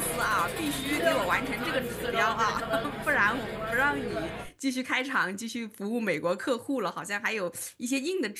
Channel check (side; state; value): both; identical; correlation 1.00